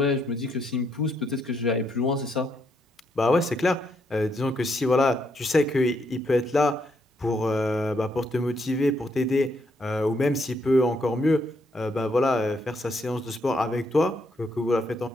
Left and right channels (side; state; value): both; normal; correlation 0.75